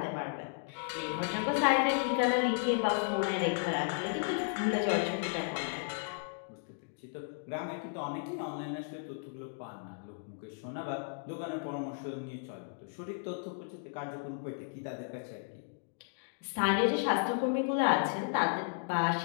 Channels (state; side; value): silent; right; digital silence